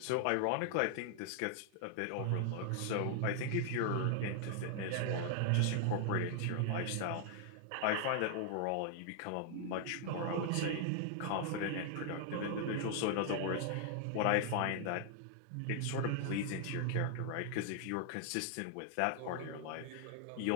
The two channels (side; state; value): both; different; correlation 0.00